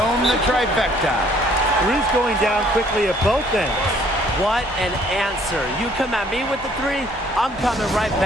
the trifecta. Three's going down quickly at both ends. What an answer. You come at me with the 3, I'm coming right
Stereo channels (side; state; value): both; normal; correlation 0.61